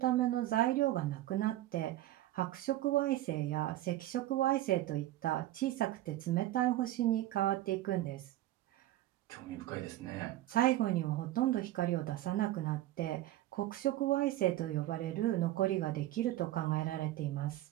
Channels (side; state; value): left; quieter; 14.9 dB